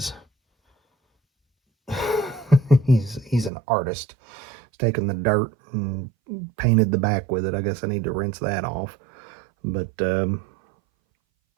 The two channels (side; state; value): left; drops out; at 3.5 s